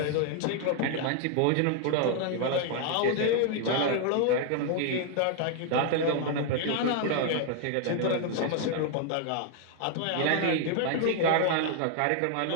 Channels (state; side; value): different; both; correlation 0.00